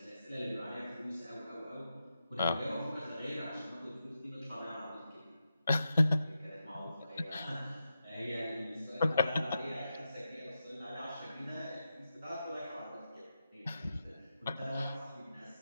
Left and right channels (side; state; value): both; inverted; correlation -0.88